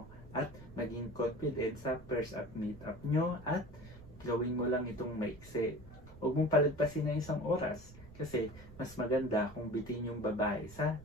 at maging confident sa first at meet up nyo at gawin mo lang itong maiksi. Huwag mong palagpasin na 1 oras kasi mas maganda kung bitin yung babae sa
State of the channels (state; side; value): noise; right; rumble, 18 dB below the sound